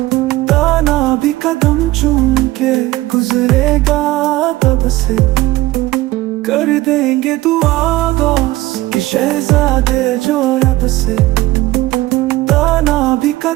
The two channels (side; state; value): left; quieter; 18.1 dB